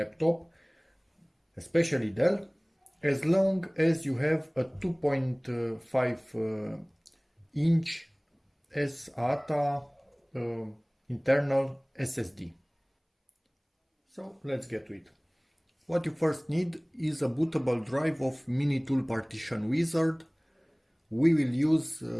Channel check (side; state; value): both; identical; correlation 1.00